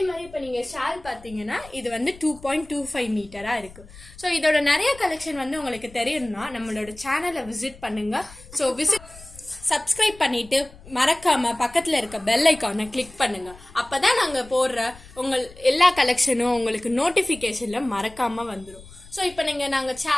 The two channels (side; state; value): left; noise; rumble, 21 dB below the sound